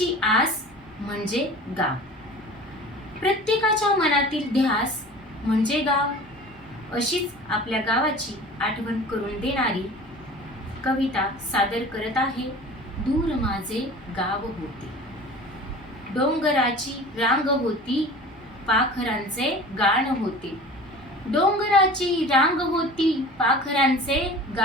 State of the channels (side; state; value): both; normal; correlation 0.40